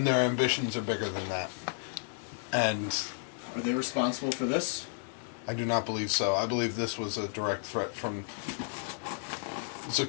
their ambitions are bigger than that. And are they responsible for this? I do not believe so. I believe this was a direct threat from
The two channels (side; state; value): right; silent; digital silence